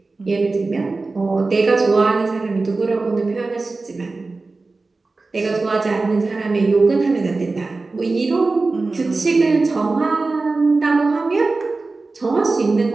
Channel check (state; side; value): quieter; left; 3.6 dB